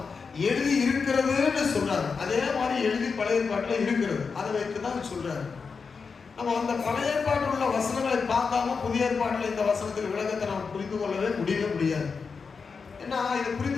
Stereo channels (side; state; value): right; quieter; 5.2 dB